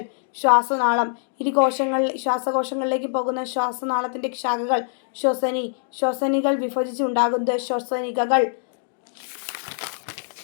ശ്വാസനാളം. ശ്വാസകോശങ്ങളിലേക്ക് പോകുന്ന ശ്വാസനാളത്തിൻ്റെ ശാഖകൾ ശ്വസനികൾ വിഭജിച്ച് ഉണ്ടാകുന്നത് ശ്വസനികകൾ.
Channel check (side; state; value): right; silent; digital silence